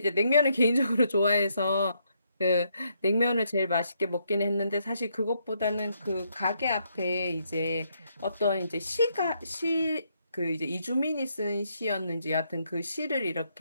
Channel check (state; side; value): inverted; both; correlation -0.75